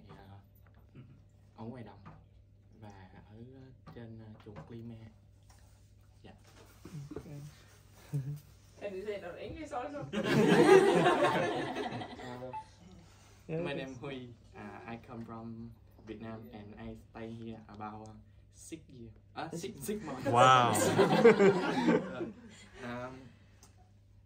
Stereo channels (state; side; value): identical; both; correlation 1.00